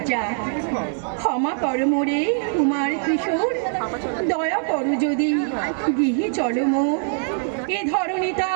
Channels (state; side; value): silent; left; digital silence